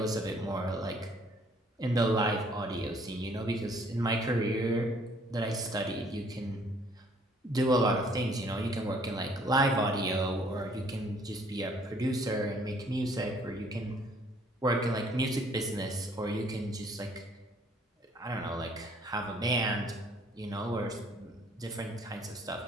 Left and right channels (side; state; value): both; normal; correlation 0.61